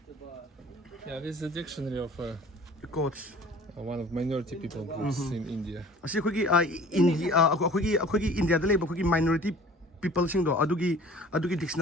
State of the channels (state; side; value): normal; both; correlation 0.47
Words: Yeah, this is a dictionary of coach one of minority people groups in India. ꯑꯁꯤ ꯑꯩꯈꯣꯏꯒꯤ ꯏꯟꯗꯤꯌꯥꯗ ꯂꯩꯕ ꯑꯩꯈꯣꯏꯒꯤ ꯃꯥꯏꯅꯣꯔꯤꯇꯤ ꯄꯤꯄꯜꯁꯤꯡꯗꯣ ꯑꯗꯨꯒꯤ